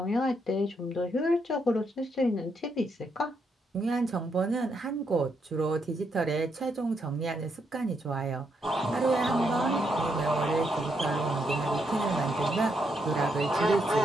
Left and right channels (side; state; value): both; normal; correlation 0.78